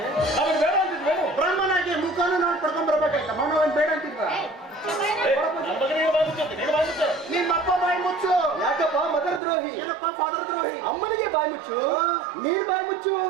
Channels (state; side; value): drops out; left; at 9.4 s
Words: ಅವನು ಬೇಡ ಅಂತಿದ್ವೇನು? ಬ್ರಾಹ್ಮಣಾಗಿ ಮುಖಾನು ನಾನು ಪಡ್ಕೊಂಡ್ ಬರ್ಬೇಕಾಯ್ತ. ಮನೋನ್ ಬೇಡ ಅಂತಿದ್ವ? ನಿಮ್ಮಪ್ಪ ಬಾಯಿ ಮುಚ್ಚು. ಯಾಕಪ್ಪ ಮದರ್ ದ್ರೋಹಿ? ಏನಪ್ಪ ಫಾದರ್ ದ್ರೋಹಿ? ಅಮ್ಮನಿಗೆ ಬಾಯಿ ಮುಚ್ಚು. ನೀನ್ ಬಾಯಿ ಮುಚ್ಚು.